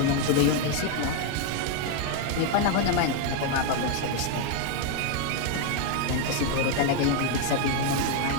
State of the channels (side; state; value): both; different; correlation 0.01